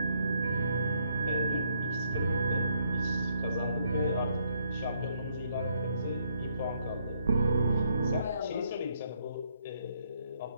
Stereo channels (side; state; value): both; inverted; correlation -0.72